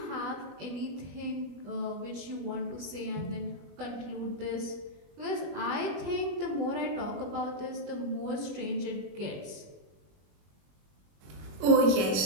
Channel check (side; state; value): left; late; 21 ms